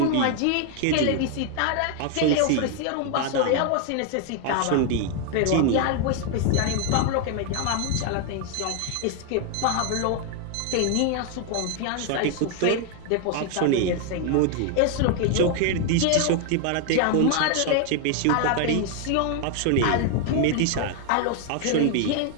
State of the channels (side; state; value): both; different; correlation 0.01